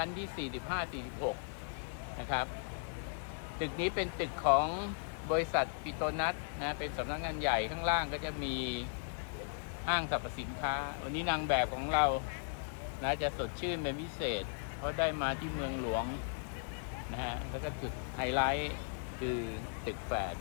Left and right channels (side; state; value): right; silent; digital silence